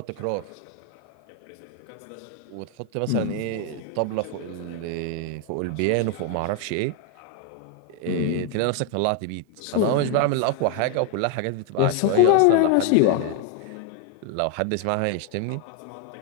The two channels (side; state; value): both; different; correlation 0.00